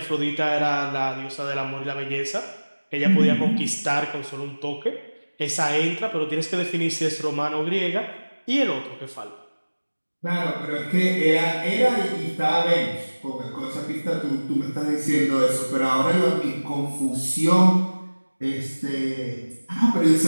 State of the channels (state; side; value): inverted; both; correlation -1.00